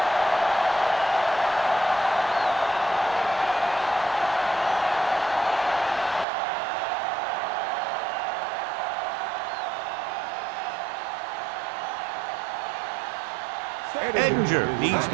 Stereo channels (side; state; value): left; drops out; at 6.2 s